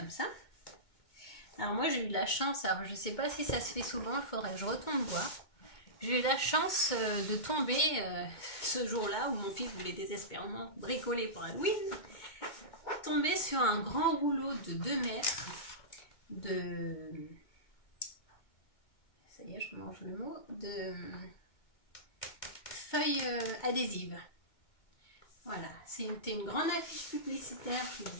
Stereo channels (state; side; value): late; right; 2.2 ms